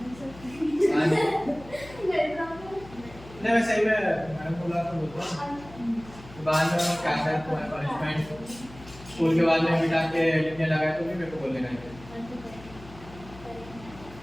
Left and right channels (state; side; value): noise; left; hum, 18 dB below the sound